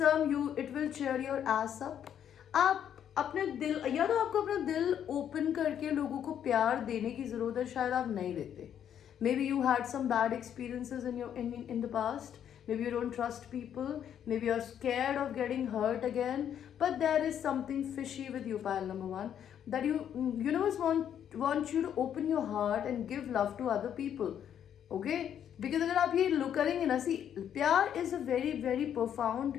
you it will cheer your ass up. आप अपने दिल, या तो आपको अपना दिल ओपन करके लोगों को प्यार देने की जरूरत है, शायद आप नहीं देते। Maybe you had some bad experiences in the past. Maybe you don't trust people, maybe you're scared of getting hurt again, but there is something fishy with you, pile number one, that universe wants you to open your heart and give love to other people. Okay, because अगर आप ये look करेंगे ना, सी प्यार is a very very profound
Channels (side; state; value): right; quieter; 9.4 dB